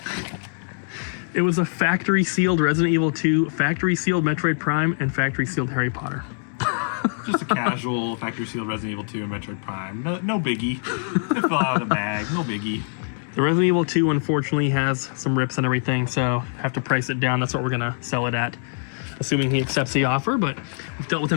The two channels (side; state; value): right; silent; digital silence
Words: It was a factory sealed Resident Evil 2, factory sealed Metroid Prime, and factory sealed Harry Potter. Just a casual factory sealed Resident Evil 2 and Metroid Prime. No biggie. It fell out of the bag. No biggie. The Resident Evil 2 unfortunately has some rips and everything, so have to price it down. That's what we're gonna sell it at, assuming he accepts the offer. But we've dealt with